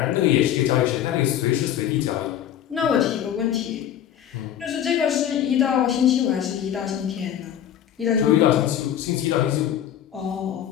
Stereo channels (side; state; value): right; quieter; 10.4 dB